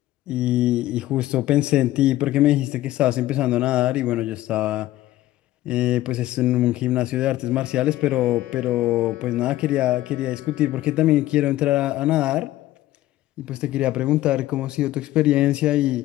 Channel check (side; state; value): right; quieter; 15.4 dB